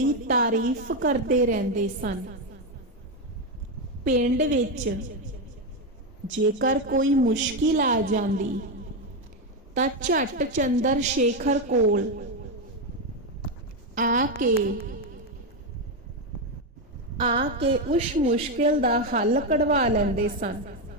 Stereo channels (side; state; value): both; normal; correlation 0.08